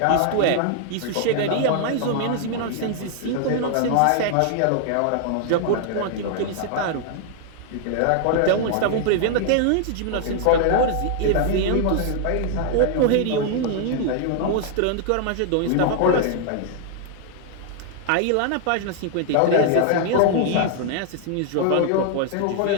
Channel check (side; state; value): both; different; correlation 0.00